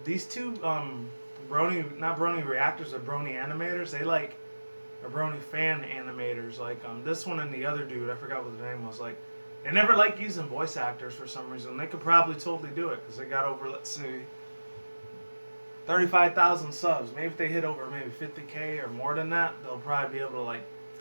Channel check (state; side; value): inverted; both; correlation -1.00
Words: these two not Brony reactors, are Brony animators. They like are Brony fan animators. Like this one and the other dude, I forgot what the name was. Like they never like using voice actors for some reason. They could probably totally do it, because they got over, let's see, 35,000 subs. Maybe if they hit over maybe 50K or more than that, they'll probably be able to like